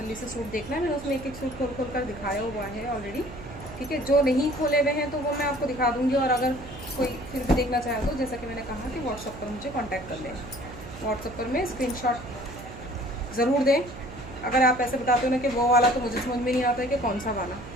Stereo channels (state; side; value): noise; right; hum, 13 dB below the sound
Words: से सूट देखना है, मैंने उसमें एक एक सूट खोल कर दिखाया हुआ है ऑलरेडी। ठीक है, जो नहीं खोले हुए हैं तो वो मैं आपको दिखा दूंगी। और अगर कोई फिर भी देखना चाहे तो, जैसा कि मैंने कहा कि व्हाट्सएप पर मुझे कांटेक्ट कर लें। व्हाट्सएप पर मैं स्क्रीनशॉट ज़रूर दें। अगर आप ऐसे बताते हो ना कि वो वाला, तो मुझे समझ में नहीं आता है कि कौन सा वाला।